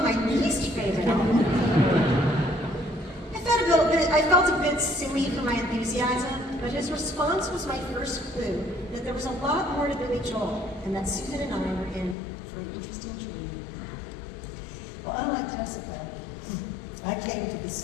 my least favorite album. I felt a bit silly for my enthusiasm, but his response was my first clue that there was a lot more to Billy Joel, and that Susan and I were in for an interesting journey. Well, unlike Jessica, I came to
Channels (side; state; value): right; drops out; at 12.2 s